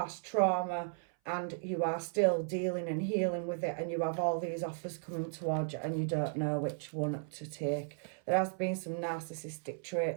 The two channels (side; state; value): left; silent; 54 dB below the other